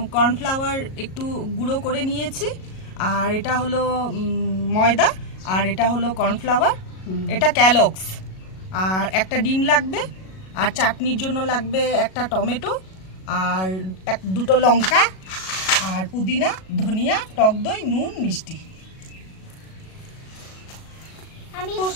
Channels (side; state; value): right; late; 37 ms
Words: কর্নফ্লাওয়ার একটু গুঁড়ো করে নিয়েছি, আর এটা হলো ময়দা, আর এটা হলো কর্নফ্লাওয়ার, এটা ক্যালক্স। আর একটা ডিম লাগবে, আর চাটনির জন্য লাগবে একটা টমেটো, আর দুটো লঙ্কা, আর পুদিনা, ধনিয়া, টক দই, নুন, মিষ্টি। আমি